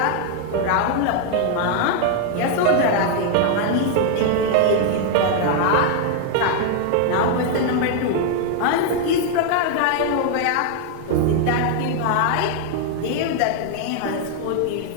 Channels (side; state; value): both; different; correlation 0.00